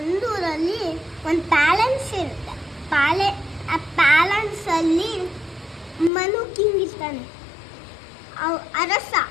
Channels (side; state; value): right; drops out; at 6.1 s